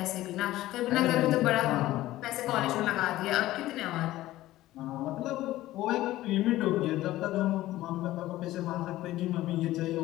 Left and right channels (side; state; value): right; quieter; 15.9 dB